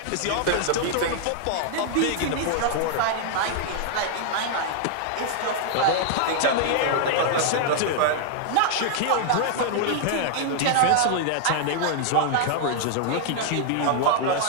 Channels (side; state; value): both; different; correlation -0.01